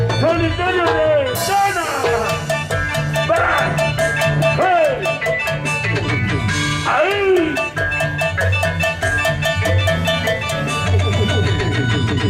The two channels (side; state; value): both; identical; correlation 1.00